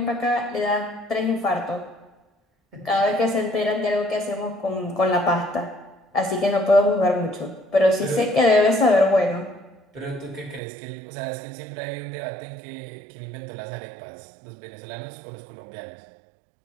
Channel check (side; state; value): left; drops out; at 10.6 s